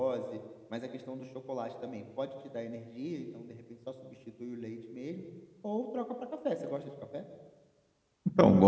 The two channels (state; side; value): identical; both; correlation 1.00